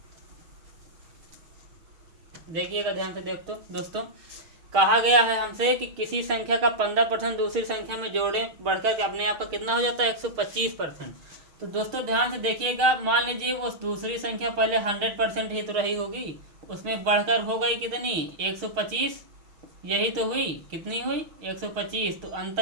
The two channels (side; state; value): left; late; 6.4 ms